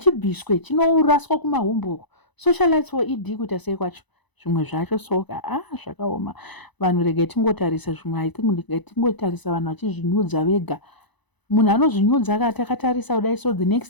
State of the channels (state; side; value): late; right; 1.0 ms